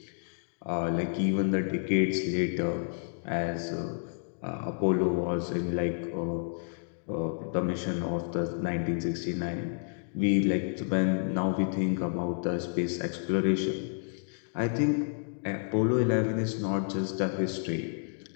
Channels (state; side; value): silent; right; digital silence